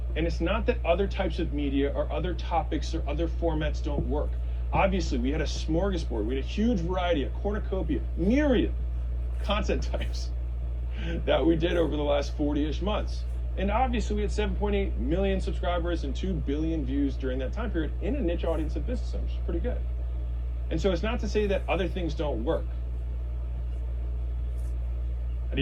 And it's not that other types of media or other topics or other formats don't work. Obviously, we had a smorgasbord. We had a huge variety, a cornucopia, myriad content types that we did over the last 40-ish months. And obviously we had 7.8 million subscribers and 2 billion views during that time period in a niche audience of business owners, which is pretty good. And so it's not to say that other things don't work. I'd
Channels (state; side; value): identical; both; correlation 1.00